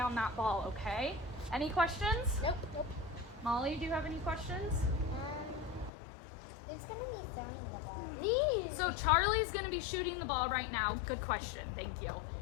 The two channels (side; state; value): right; drops out; at 5.9 s